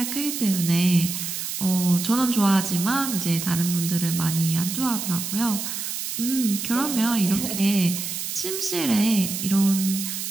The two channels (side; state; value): right; noise; hiss, 5 dB below the sound